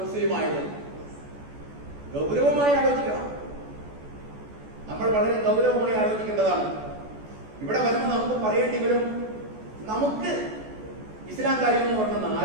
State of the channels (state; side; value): late; left; 14 ms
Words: മുസ്ലിം ആയത്? ഗൗരവമായി ആലോചിക്കണം. നമ്മൾ വളരെ ഗൗരവമായി ആലോചിക്കേണ്ടതാണ്. ഇവിടെ വരുമ്പോൾ നമുക്ക് പറയേണ്ടി വരും, നമുക്ക് ഇസ്ലാം കാര്യം എന്ന് പറഞ്ഞ